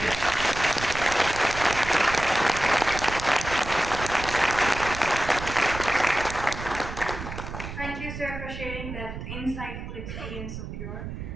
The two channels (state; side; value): noise; right; rumble, 9 dB below the sound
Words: Thank you, sir, for sharing that insightful experience of yours.